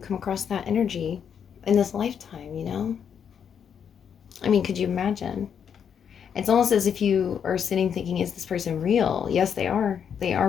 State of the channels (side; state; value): right; quieter; 7.8 dB